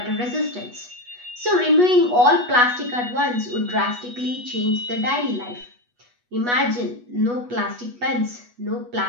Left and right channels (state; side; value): late; left; 8.2 ms